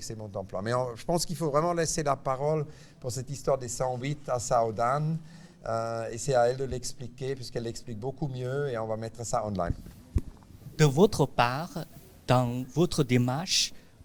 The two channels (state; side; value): identical; both; correlation 1.00